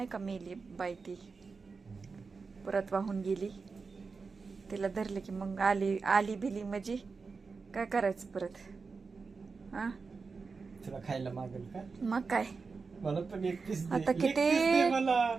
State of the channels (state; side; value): quieter; left; 4.7 dB